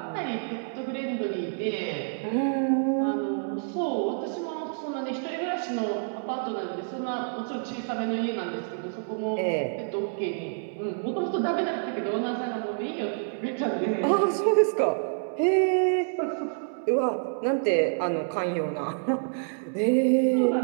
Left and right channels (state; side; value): silent; left; 59 dB below the other